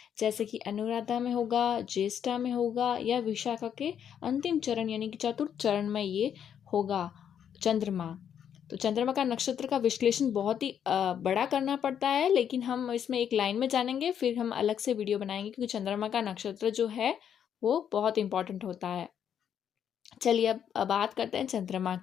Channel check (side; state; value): right; quieter; 8.7 dB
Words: जैसे कि अनुराधा में होगा, ज्येष्ठा में होगा या विशाखा के अंतिम चरण यानी कि चतुर्थ चरण में ये होगा चंद्रमा। तो चंद्रमा का नक्षत्र का विश्लेषण बहुत ही बड़ा करना पड़ता है, लेकिन हम इसमें एक लाइन में जानेंगे, फिर हम अलग से वीडियो बनाएंगे क्योंकि चंद्रमा का नक्षत्र जो है वो बहुत इंपॉर्टेंट होता है। चलिए अब बात करते हैं चंद्रमा